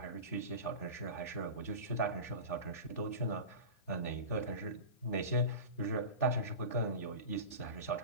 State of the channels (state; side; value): late; right; 3.4 ms